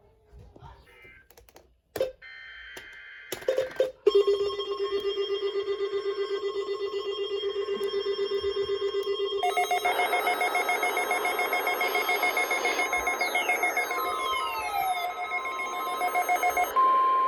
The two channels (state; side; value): identical; both; correlation 1.00